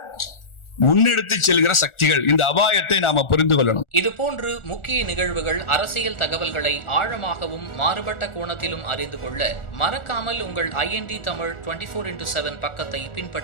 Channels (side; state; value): right; late; 1.4 ms